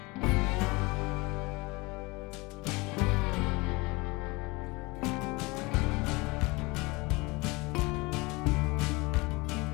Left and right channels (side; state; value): right; quieter; 24.7 dB